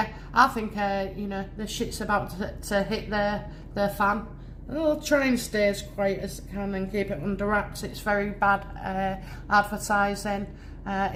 I think, you know, the shit's about to hit the fan. I'll try and stay as quiet as I can and keep it under wraps. It's very bad advertising,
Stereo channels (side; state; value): both; identical; correlation 1.00